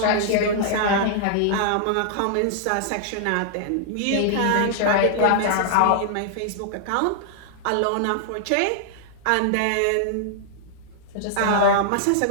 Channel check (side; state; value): both; different; correlation -0.01